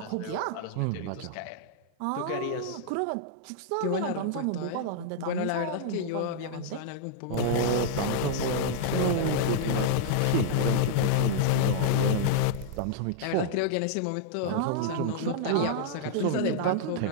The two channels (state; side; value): different; both; correlation -0.01